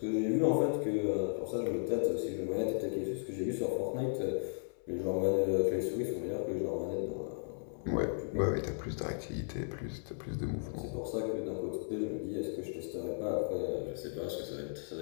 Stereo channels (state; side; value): silent; right; 54 dB below the other